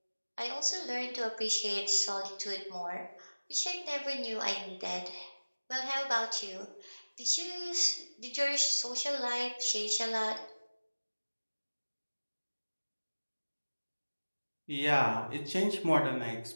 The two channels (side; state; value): both; inverted; correlation -1.00